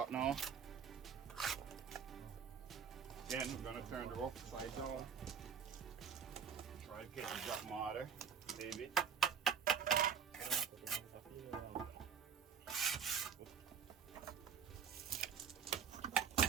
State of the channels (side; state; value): left; quieter; 7.3 dB